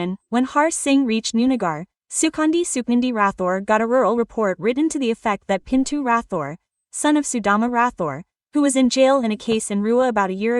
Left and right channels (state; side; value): identical; both; correlation 1.00